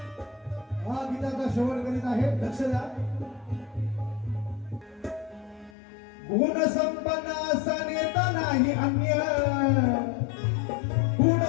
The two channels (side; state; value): right; drops out; at 5.7 s